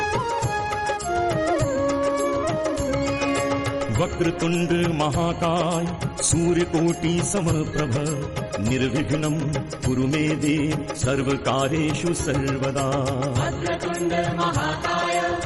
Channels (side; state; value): both; identical; correlation 1.00